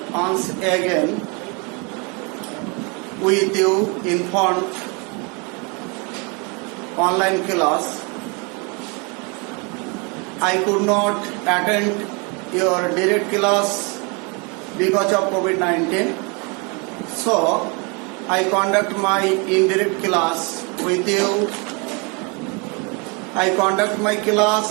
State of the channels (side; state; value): left; quieter; 31.1 dB